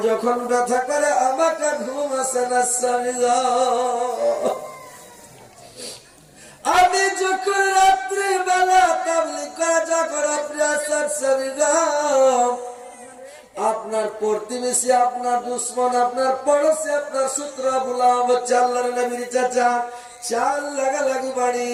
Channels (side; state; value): both; identical; correlation 1.00